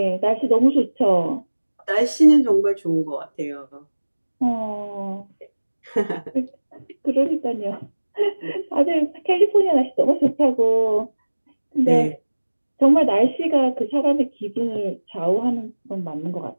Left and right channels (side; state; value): both; inverted; correlation -1.00